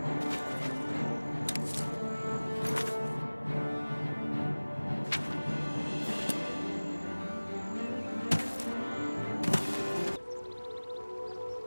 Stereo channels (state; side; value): inverted; both; correlation -1.00